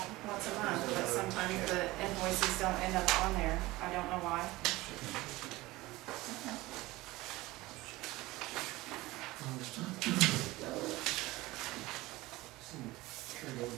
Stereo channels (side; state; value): left; quieter; 19.6 dB